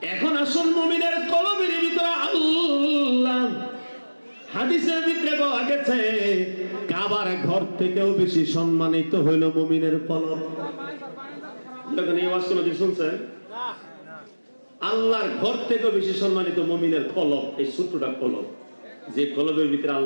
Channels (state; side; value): inverted; both; correlation -1.00